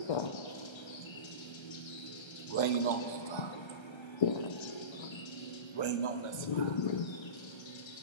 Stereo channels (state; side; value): late; right; 1.3 ms